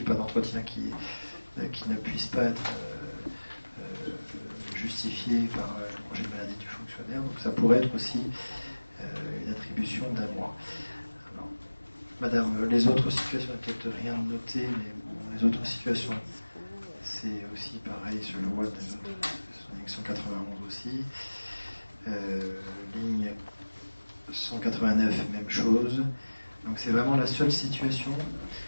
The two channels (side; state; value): both; inverted; correlation -1.00